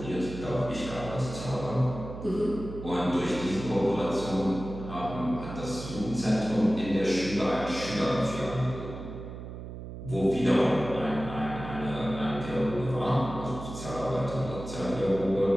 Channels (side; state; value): right; noise; hum, 10 dB below the sound